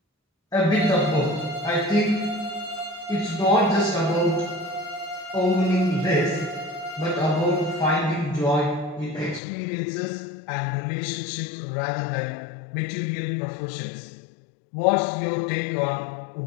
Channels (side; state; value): right; drops out; at 9.4 s